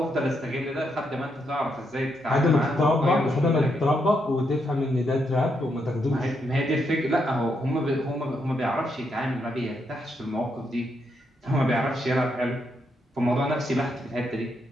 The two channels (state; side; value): normal; both; correlation 0.79